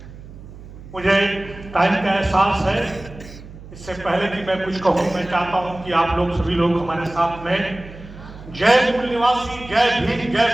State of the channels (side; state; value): right; noise; hum, 16 dB below the sound